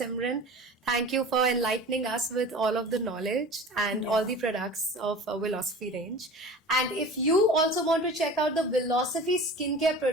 Thank you for enlightening us with all of the knowledge and all the products of Philosophy range. And if you also want to check out the Philosophy skincare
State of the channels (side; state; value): both; normal; correlation 0.38